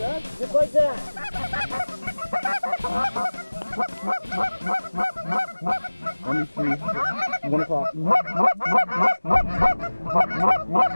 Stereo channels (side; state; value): both; inverted; correlation -1.00